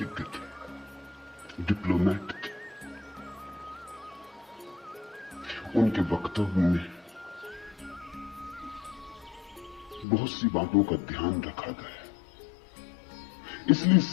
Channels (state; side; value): drops out; right; at 10.1 s